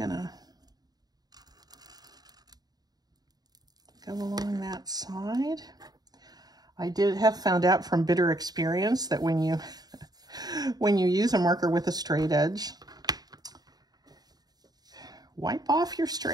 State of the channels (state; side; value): late; left; 0.19 ms